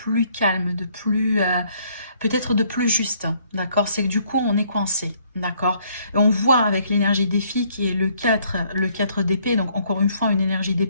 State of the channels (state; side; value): inverted; both; correlation -0.66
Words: calme, de plus... peut-être de plus juste, d'accord? C'est que du coup, on est coincé, d'accord? Et on voit avec l'énergie des filles qui est le 4 d'épée, donc encore une fois, une énergie